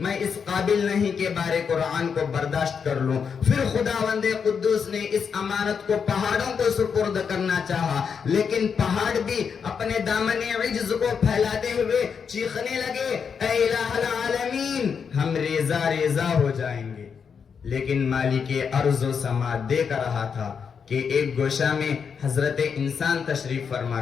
میں اس قابل نہیں کہ بارے قرآن کو برداشت کر لوں۔ پھر خداوند قدوس نے اس امانت کو پہاڑوں کو سپرد کرنا چاہا، لیکن پہاڑ بھی اپنے دامن عجز کو پھیلاتے ہوئے چیخنے لگے، اے الہ العالمین، ہم ریزہ ریزہ ہو جائیں گے۔ لیکن مالک ارض و سما دیکھ رہا تھا کہ ایک گوشہ میں حضرت انسان تشریف فرما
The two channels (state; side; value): quieter; right; 6.5 dB